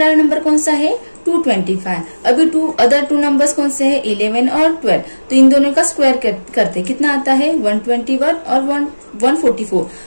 नंबर कौन सा है 225। अभी अदर टू नंबर्स कौन से है 11 और 12, तो इन दोनों का स्क्वायर करते कितना आता है 121 और 144,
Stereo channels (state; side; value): inverted; both; correlation -1.00